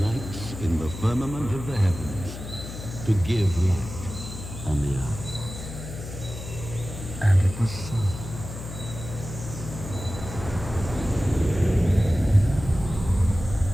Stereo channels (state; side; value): noise; left; hum, 10 dB below the sound